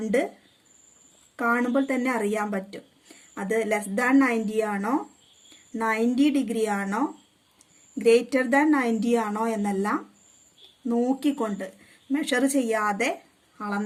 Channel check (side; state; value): both; identical; correlation 1.00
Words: കാണുമ്പോൾ തന്നെ അറിയാൻ പറ്റും അത് ലെസ് ദാൻ 90 ആണോ, 90 ഡിഗ്രി ആണോ, ഗ്രേറ്റർ ദാൻ 90 ആണോ എന്നെല്ലാം നോക്കിക്കൊണ്ട് മെഷർ ചെയ്യാതെ